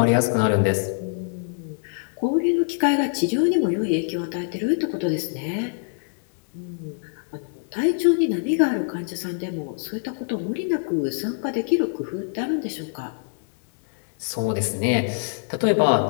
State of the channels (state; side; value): silent; right; digital silence